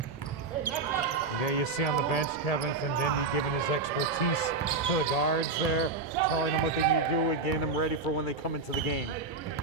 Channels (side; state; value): left; quieter; 3.9 dB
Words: There you see on the bench Kevin Findendi giving his expertise to the guards there, telling them what they need to do and getting them ready for when they come into the game.